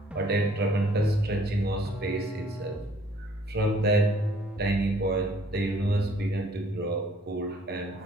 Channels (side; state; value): both; normal; correlation 0.60